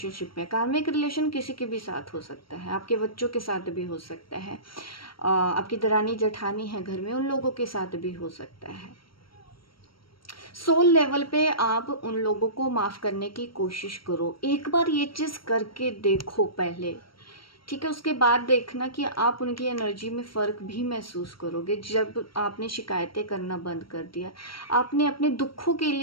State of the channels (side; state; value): right; late; 0.74 ms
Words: में, कार्मिक रिलेशन किसी के भी साथ हो सकता है, आपके बच्चों के साथ भी हो सकता है, आपकी दरानी जेठानी है घर में उन लोगों के साथ भी हो सकता है। सोल लेवल पे आप उन लोगों को माफ़ करने की कोशिश करो, एक बार ये चीज़ करके देखो पहले, ठीक है। उसके बाद देखना कि आप उनकी एनर्जी में फ़र्क भी महसूस करोगे। जब आपने शिकायतें करना बंद कर दिया, आपने अपने दुखों के